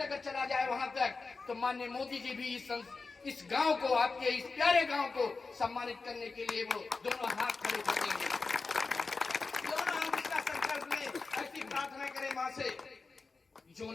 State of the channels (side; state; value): right; quieter; 4.1 dB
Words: चला जाए वहां तक, तो माननीय मोदी जी भी इस गांव को, आपके इस प्यारे गांव को सम्मानित करने के लिए वो दोनों हाथ खड़े कर देंगे। दोनों हम इसका संकल्प लें, ऐसी प्रार्थना करें मां से। जो